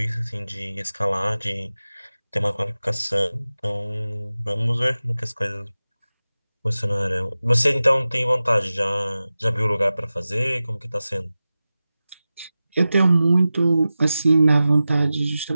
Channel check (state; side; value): inverted; both; correlation -0.95